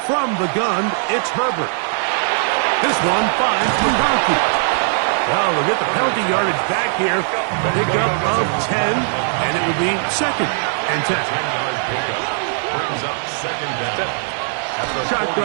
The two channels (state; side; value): silent; left; 56 dB below the other